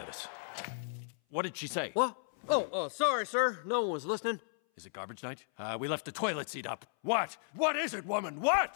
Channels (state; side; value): silent; right; 55 dB below the other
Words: us. What did she say? What? Oh, sorry, sir. No one was listening. Is it garbage night? We left the toilet seat up. What? What is it, woman?